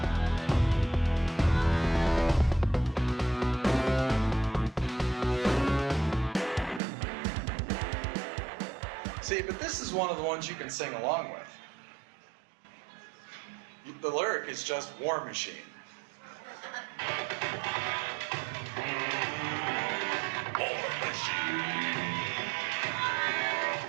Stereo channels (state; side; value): drops out; left; at 6.8 s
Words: See, but this is one of the ones you can sing along with. The lyric is just War Machine. War Machine.